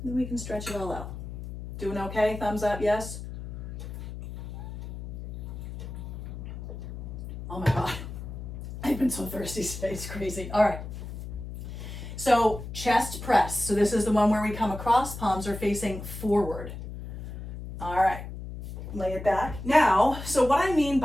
And then we can stretch it all out. Doing okay? Thumbs up, yes? Oh my God. I've been so thirsty today, it's crazy. All right. So chest press. So this is the one where we come across, palms are facing forward. All right, lay it back. Now, so what I mean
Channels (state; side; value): noise; left; hum, 9 dB below the sound